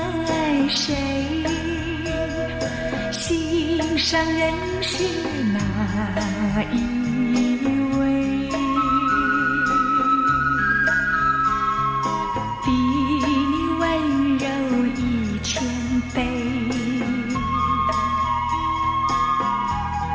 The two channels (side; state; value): both; identical; correlation 1.00